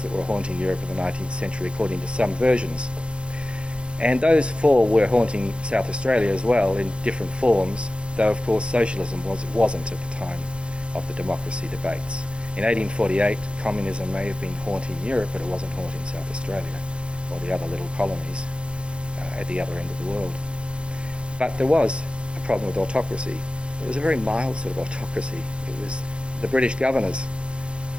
that were haunting Europe in the 19th century, according to some versions. And those four were haunting South Australia as well in different forms, though, of course, socialism wasn't at the time of the democracy debates. In 1848, communism may have been haunting Europe, but it wasn't haunting South Australia or the other little colonies at the other end of the world. But there was a problem with autocracy. It was a very mild sort of autocracy. It was the British governors.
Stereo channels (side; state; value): left; late; 0.057 ms